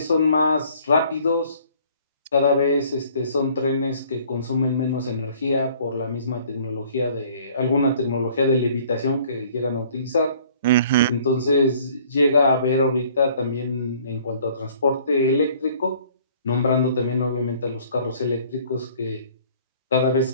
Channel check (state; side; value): inverted; both; correlation -0.56